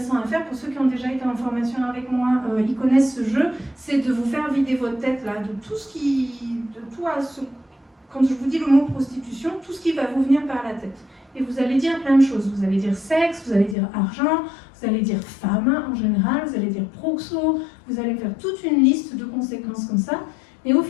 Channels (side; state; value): right; drops out; at 13.8 s